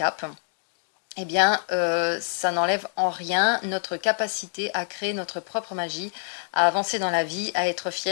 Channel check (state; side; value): silent; right; digital silence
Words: eh bien, ça n'enlève en rien notre capacité à créer notre propre magie, à avancer dans la vie, à être